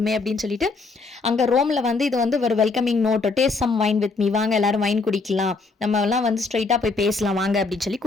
அப்படின்னு சொல்லிட்டு அங்கே ரோமில் வந்து இது வந்து ஒரு welcoming note, taste some wine with me, வாங்க எல்லாரும் வைன் குடிக்கலாம், நம்ம எல்லாம் வந்து ஸ்ட்ரைட்டாக போய் பேசலாம் வாங்க அப்படின்னு சொல்லி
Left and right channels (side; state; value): right; quieter; 4.0 dB